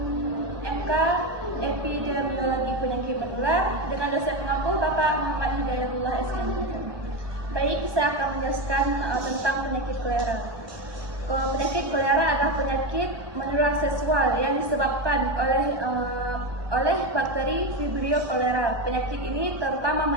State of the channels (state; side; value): late; left; 1.2 ms